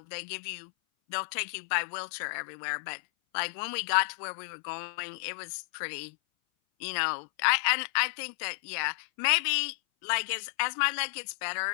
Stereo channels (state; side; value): silent; right; 57 dB below the other